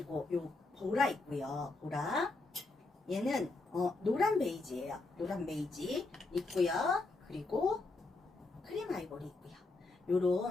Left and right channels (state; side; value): quieter; right; 3.3 dB